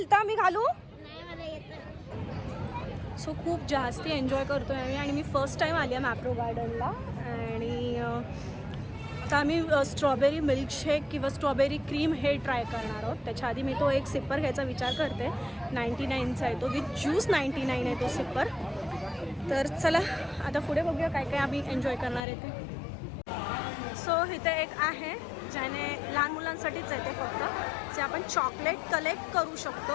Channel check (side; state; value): right; drops out; at 22.2 s